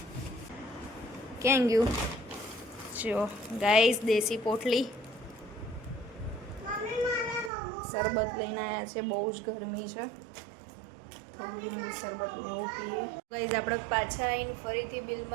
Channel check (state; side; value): drops out; left; at 7.5 s